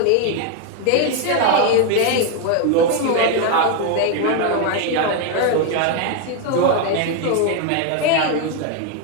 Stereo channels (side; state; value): both; different; correlation 0.01